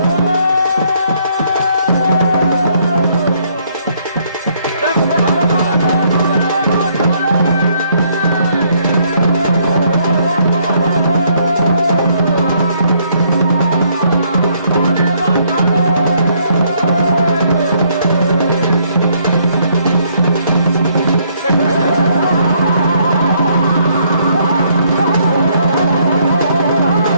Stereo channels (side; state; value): both; inverted; correlation -0.69